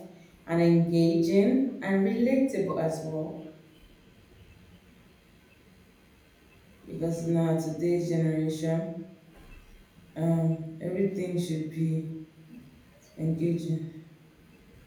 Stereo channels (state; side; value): identical; both; correlation 1.00